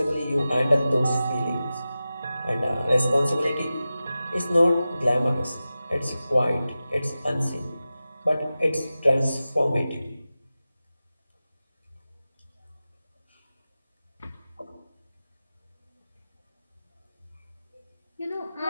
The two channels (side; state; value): both; inverted; correlation -0.94